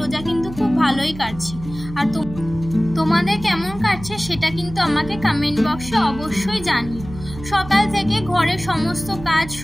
কিন্তু খুব ভালোই কাটছে। আর তোমাদের কেমন কাটছে সেটা কিন্তু আমাকে কমেন্ট বক্সে অবশ্যই জানিও। সকাল থেকে ঘরের সমস্ত কাজ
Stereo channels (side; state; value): right; noise; hum, 13 dB below the sound